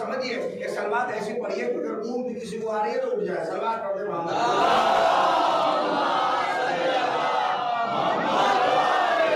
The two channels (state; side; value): identical; both; correlation 1.00